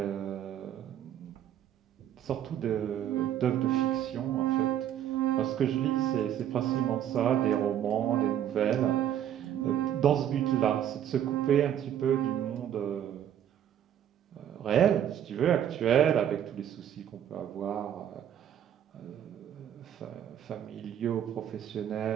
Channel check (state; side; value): quieter; left; 10.3 dB